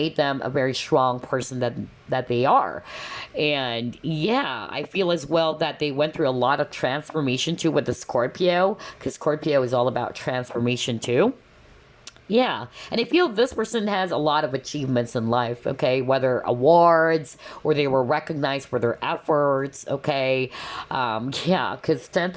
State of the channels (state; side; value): identical; both; correlation 1.00